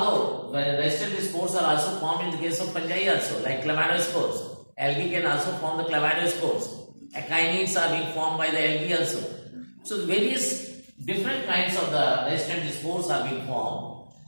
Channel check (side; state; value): both; inverted; correlation -1.00